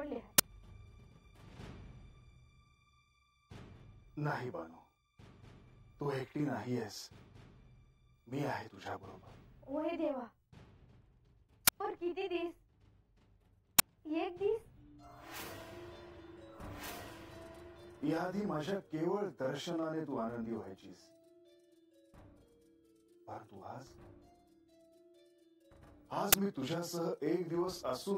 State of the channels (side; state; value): both; identical; correlation 1.00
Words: आहे. नाही बानू, तू एकटी नाही आहेस. मी आहे तुझ्या बरोबर. होय देवा, पर किती दिस? एक दिस? याआधी माझ्या केवळ दर्शनाने तू आनंदी व्हायचीस, परंतु आज मी तुझ्यासह एक दिवस